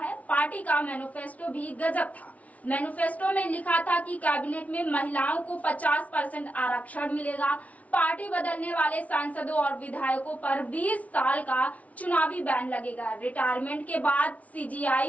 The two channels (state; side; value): late; right; 0.069 ms